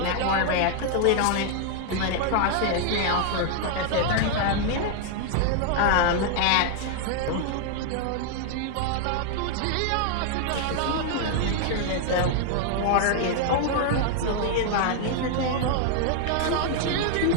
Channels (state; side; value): different; both; correlation 0.00